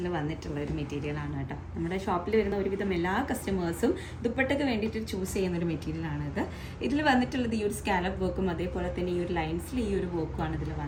വന്നിട്ടുള്ള ഒരു മെറ്റീരിയലാണ് കേട്ടോ. നമ്മുടെ ഷോപ്പിൽ വരുന്ന ഒരുവിധം എല്ലാ കസ്റ്റമേഴ്സും ദുപ്പട്ടയ്ക്ക് വേണ്ടിയിട്ട് ചൂസ് ചെയ്യുന്ന ഒരു മെറ്റീരിയലാണ് ഇത്. ഇതിൽ വന്നിട്ടുള്ളത് ഈ ഒരു സ്കാലപ്പ് വർക്കും അതേപോലെ തന്നെ ഈ ഒരു ലൈൻസിൽ ഈ ഒരു വർക്കുമാണ് ഇതിൽ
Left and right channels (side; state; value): both; identical; correlation 1.00